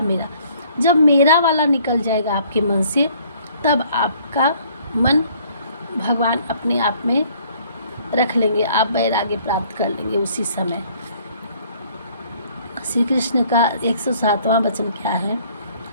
मेरा, जब मेरा वाला निकल जाएगा आपके मन से, तब आपका मन भगवान अपने आप में रख लेंगे, आप वैराग्य प्राप्त कर लेंगे उसी समय। श्री कृष्ण का 107वां वचन क्या है?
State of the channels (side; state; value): both; inverted; correlation -0.60